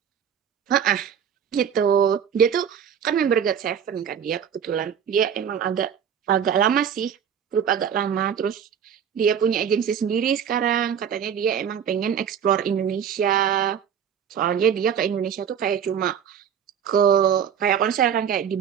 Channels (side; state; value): left; quieter; 8.2 dB